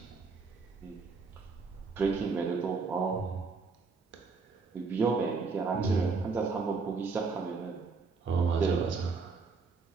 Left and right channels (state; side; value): quieter; left; 4.6 dB